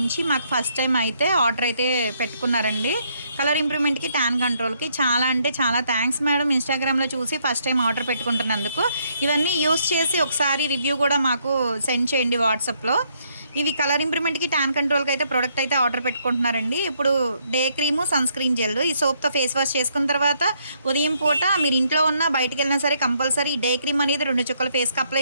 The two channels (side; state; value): both; inverted; correlation -0.72